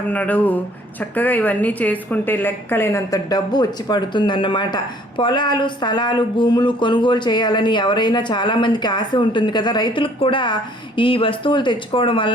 నాడు చక్కగా ఇవన్నీ చేసుకుంటే లెక్కలేనంత డబ్బు వచ్చి పడుతుందన్నమాట. పొలాలు, స్థలాలు, భూములు కొనుగోలు చేయాలని ఎవరైనా చాలామందికి ఆశ ఉంటుంది కదా! రైతులకు కూడా ఈ వస్తువులు తెచ్చుకోవడం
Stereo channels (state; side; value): normal; both; correlation 0.58